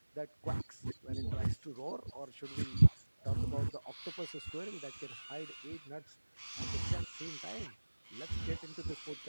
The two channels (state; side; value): inverted; both; correlation -1.00